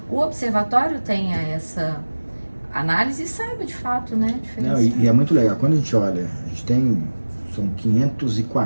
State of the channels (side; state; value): both; inverted; correlation -1.00